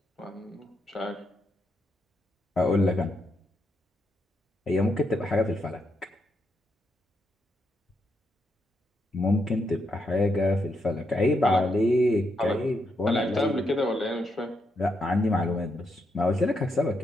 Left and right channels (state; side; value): normal; both; correlation 0.80